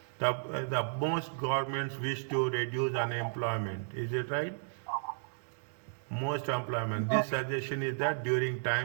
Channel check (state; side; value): silent; left; digital silence